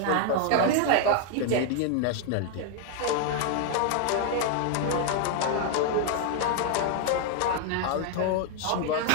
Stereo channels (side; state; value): both; different; correlation 0.00